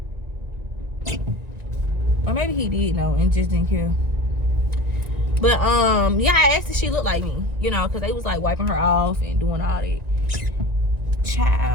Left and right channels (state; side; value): late; left; 1.9 ms